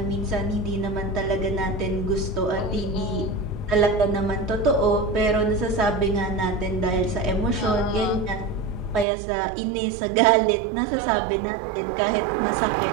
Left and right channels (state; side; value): drops out; left; at 9.1 s